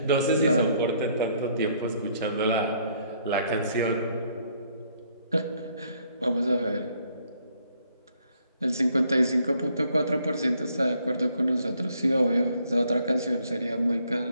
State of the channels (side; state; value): both; inverted; correlation -0.67